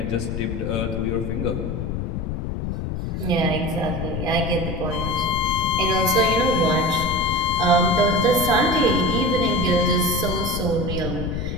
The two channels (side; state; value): left; noise; rumble, 4 dB below the sound